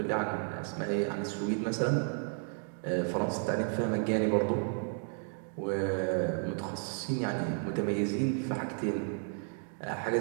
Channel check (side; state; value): left; silent; 56 dB below the other